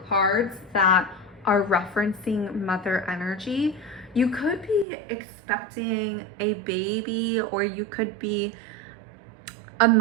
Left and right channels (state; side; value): drops out; left; at 4.9 s